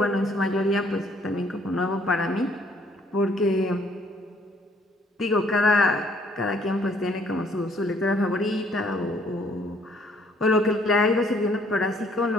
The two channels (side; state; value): both; normal; correlation 0.63